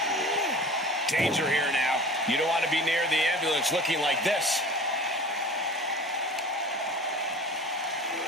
Danger here now. You don't want to be near the ambulance looking like this.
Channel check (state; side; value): normal; both; correlation 0.39